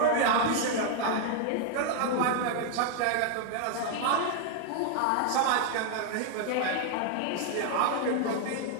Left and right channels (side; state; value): both; different; correlation 0.00